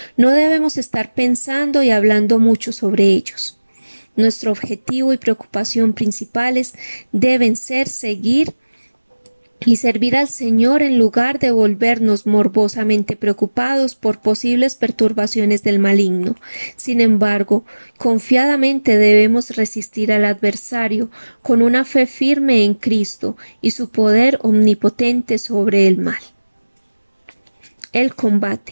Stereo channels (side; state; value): both; inverted; correlation -1.00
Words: no debemos estar pensando y hablando mucho sobre ellos. Nuestro objetivo y preocupación principales deben ser seguir y servir al Señor en lugar de volvernos morbosamente preocupados por posibles perturbaciones del maligno. Sin embargo, confiadamente debemos resistir al adversario con una fe firme en Cristo y su poder omnipotente sobre el mal. El